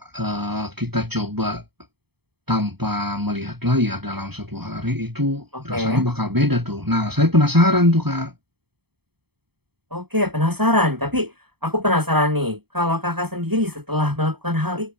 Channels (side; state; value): left; late; 0.97 ms